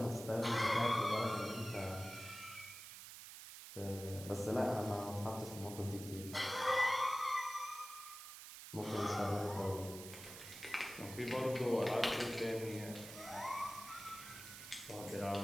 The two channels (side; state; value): right; noise; hiss, 12 dB below the sound